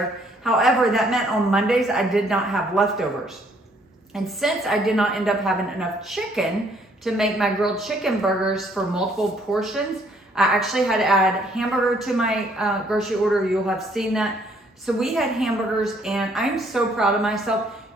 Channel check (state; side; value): normal; both; correlation 0.65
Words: However, that meant on Mondays, I did not have leftovers. And since I did not end up having enough chicken to make my grilled chicken burgers for multiple portions, I actually had to add hamburger to my grocery order. You'll have seen that. So we had hamburgers, and I'm so proud of myself.